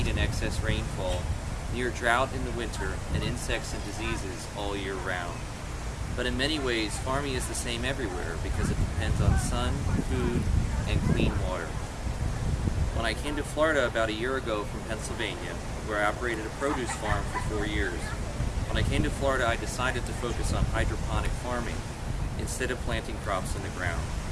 and excess rainfall, near drought in the winter, and insects and diseases all year round. But in many ways, farming is the same everywhere because it depends on sun, food, and clean water. When I came to Florida about a year ago from Pennsylvania, where I operated a produce farm for 4 years, when I came to Florida, I decided to focus on hydroponic farming instead of planting crops in the ground.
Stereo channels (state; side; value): identical; both; correlation 1.00